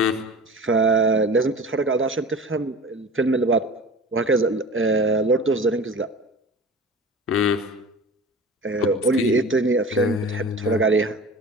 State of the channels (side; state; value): both; normal; correlation 0.37